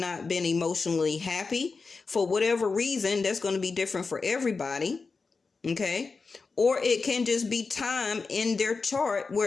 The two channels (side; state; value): right; quieter; 4.4 dB